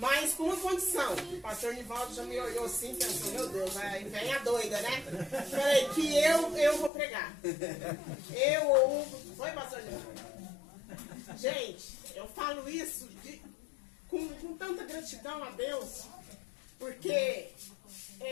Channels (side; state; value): right; drops out; at 6.9 s